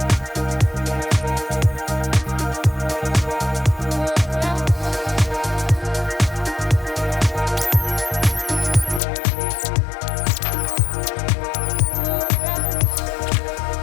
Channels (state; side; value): drops out; right; at 9.0 s